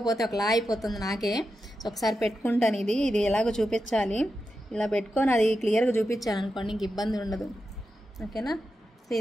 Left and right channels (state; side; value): normal; both; correlation 0.89